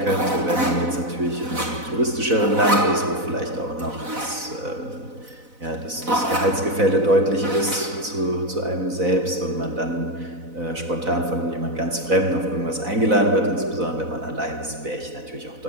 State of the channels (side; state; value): left; late; 4.0 ms